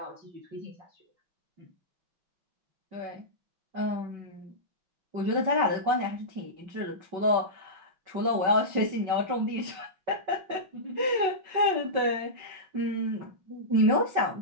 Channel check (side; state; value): left; late; 5.4 ms